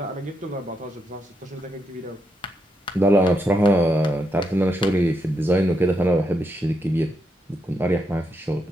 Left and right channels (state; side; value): normal; both; correlation 0.82